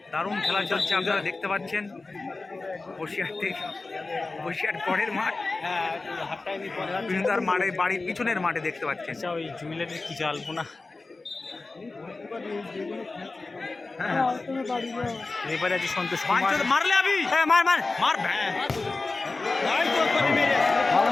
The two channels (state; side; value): quieter; right; 3.5 dB